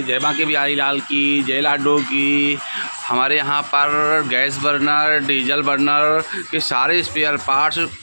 जय बांके बिहारी लाल की, जय लाडो की। हमारे यहाँ पर गैस बर्नर, डीजल बर्नर के सारे स्पेयर पार्ट्स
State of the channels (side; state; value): both; inverted; correlation -1.00